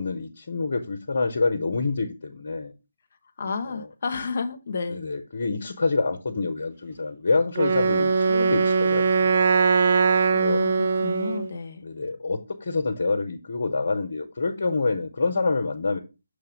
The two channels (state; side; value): inverted; both; correlation -0.84